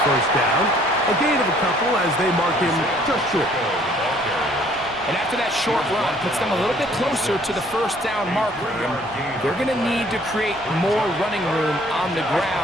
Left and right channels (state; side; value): noise; right; rumble, 22 dB below the sound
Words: first down. A gain of a couple as they mark him just short. And after that short run, puts them a little bit closer to the first down marker. And they're going to need to create more running room on the